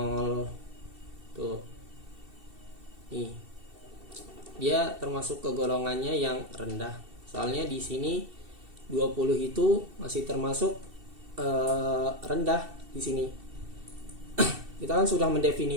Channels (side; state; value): left; late; 2.7 ms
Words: tuh. Nih. Dia termasuk ke golongannya yang rendah. Soalnya di sini 20 itu masih termasuk rendah di sini. Kita kan sudah